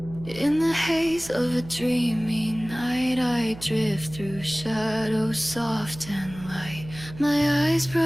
In the haze of a dreamy night, I drift through shadows soft and light. My eyes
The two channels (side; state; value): right; noise; hum, 15 dB below the sound